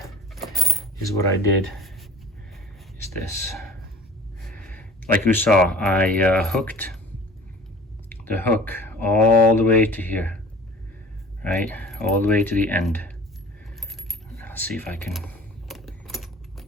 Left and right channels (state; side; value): normal; both; correlation 0.44